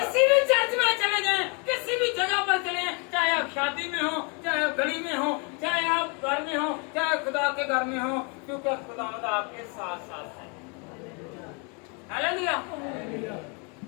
भी चर्च में चले जाएं, किसी भी जगह पर चले, चाहे आप शादी में हो, चाहे आप गली में हो, चाहे आप घर में हो, चाहे खुदा के घर में हो, क्योंकि खुदा आपके साथ साथ है। हालेलुया।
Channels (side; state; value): right; quieter; 34.2 dB